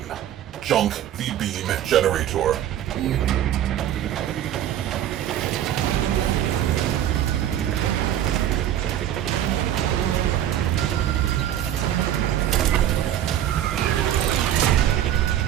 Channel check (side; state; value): left; quieter; 11.5 dB